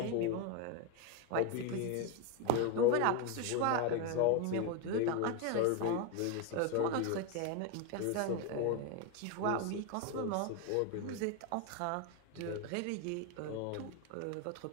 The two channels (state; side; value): different; both; correlation 0.02